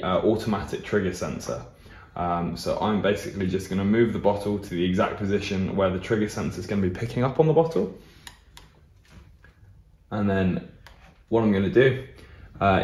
automatic trigger sensor. So I'm basically just going to move the bottle to the exact position where the trigger sensor is going to be picking up on the bottle. And then what I'm going to do,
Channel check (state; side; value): identical; both; correlation 1.00